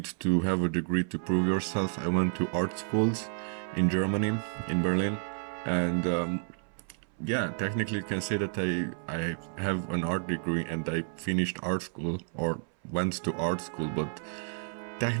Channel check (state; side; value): silent; left; 57 dB below the other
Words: to have a degree to prove yourself, I went to art schools in Germany, in Berlin, and yeah, technically you can say that I have an art degree and I finished art school, or went to art school, but